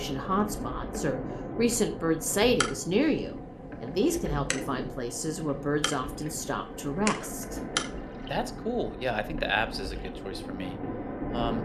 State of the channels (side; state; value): both; identical; correlation 1.00